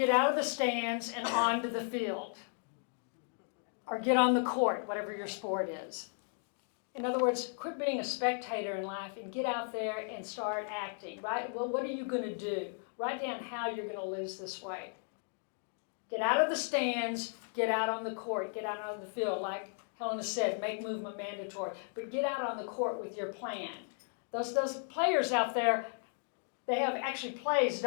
out of the stands and onto the field. Or get on the court, whatever your sport is. In other words, quit being a spectator in life and get out there and start acting, right? Well, what are you going to do? Write down how you're going to lose this weight. Get out of the stands, get out on the court, get out on the field. Like Helena said, make movement mandatory. But get out on the court with your plan. Those players out there, they have actually plays,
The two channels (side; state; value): right; silent; 54 dB below the other